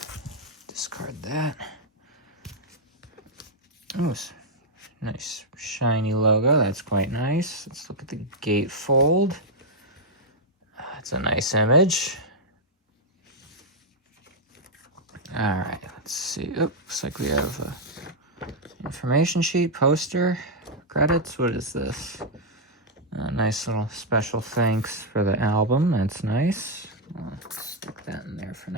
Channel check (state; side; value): normal; both; correlation -0.03